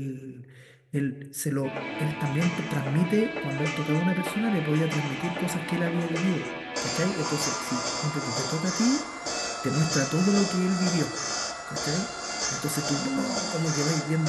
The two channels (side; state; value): both; identical; correlation 1.00